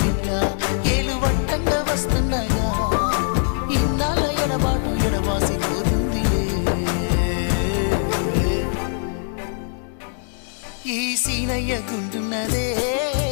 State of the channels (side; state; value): right; silent; 64 dB below the other